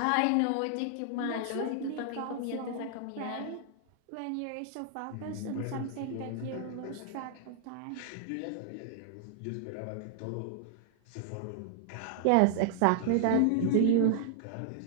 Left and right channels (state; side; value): different; both; correlation 0.00